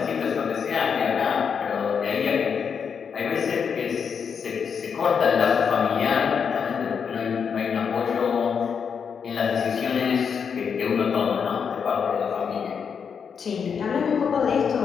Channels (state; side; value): quieter; right; 6.6 dB